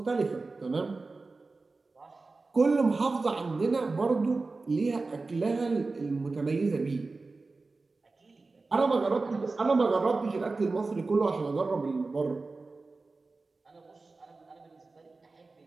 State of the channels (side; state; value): left; quieter; 3.7 dB